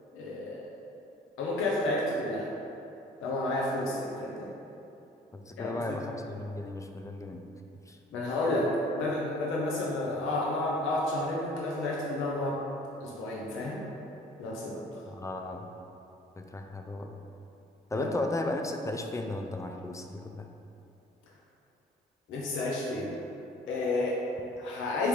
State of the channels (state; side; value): normal; both; correlation 0.50